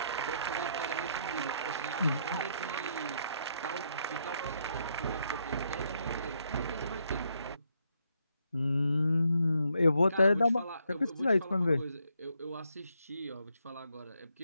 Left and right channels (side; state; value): both; inverted; correlation -0.75